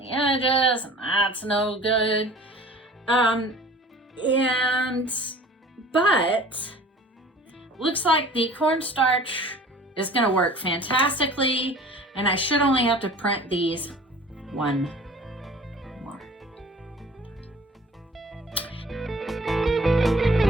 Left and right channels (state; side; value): normal; both; correlation 0.46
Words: edges, and that's no good. But looks like the cornstarch is gonna work fantastically, and I should only have to print these one more.